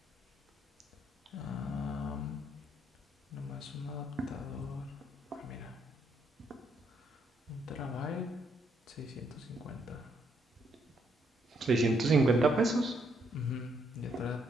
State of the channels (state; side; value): normal; both; correlation 0.73